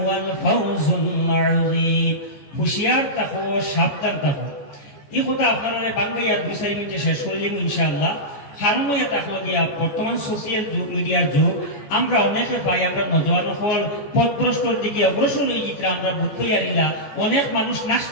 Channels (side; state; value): right; late; 14 ms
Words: ফাওজুল আযীম। হুঁশিয়ার থাকো, সাবধান থাকো। এই কথা আপনারা বাংলাইয়া 2-4 মিনিটে শেষ করে দিব ইনশাআল্লাহ। কারণ এটা হলো গিয়া বর্তমান সোশিয়াল যুগ, মিডিয়ার যুগ। আমরা অনেকে পাই আমরা নজওয়ান হল পথভ্রষ্টর দিকে অগ্রসর হয়ে যেতে আমরা বুঝতে পারিলা। অনেক মানুষ